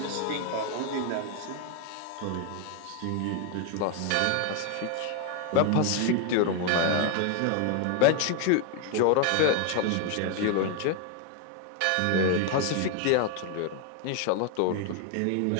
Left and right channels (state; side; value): different; both; correlation 0.01